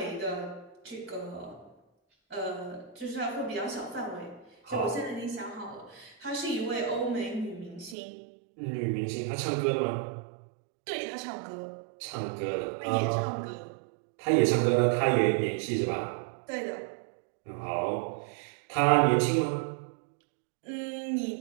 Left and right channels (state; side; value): drops out; left; at 8.0 s